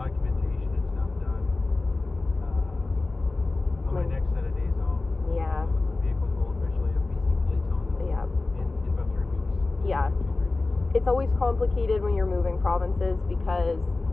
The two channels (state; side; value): quieter; right; 3.4 dB